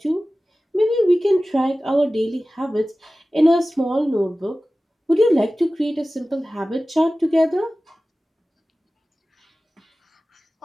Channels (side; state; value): both; normal; correlation 0.96